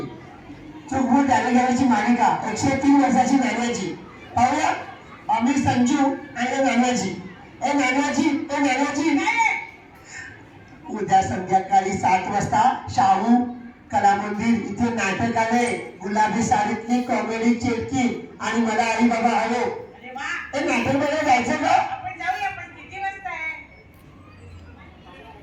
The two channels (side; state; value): both; identical; correlation 1.00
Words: चूक भूल द्यावी घ्यावीची मालिका 103 वर्षाची नाण्याची. पाहूया आम्ही संजू आणि नानाजी. ए नानाजी ए नानाजी. उद्या संध्याकाळी 7 वाजता शाहू कला मंदिर इथे नाटक आलंय. गुलाबी साडीतली कॉमेडी चेटकी आणि मला आई बाबा हवो. ते नाटक बघायला जायचं का? आपण जाऊया. पण किती वाजता आहे?